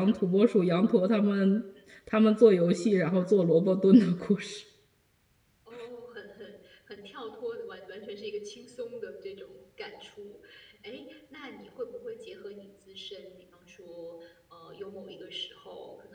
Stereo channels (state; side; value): identical; both; correlation 1.00